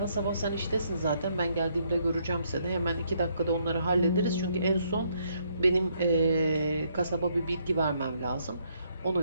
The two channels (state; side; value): inverted; both; correlation -0.72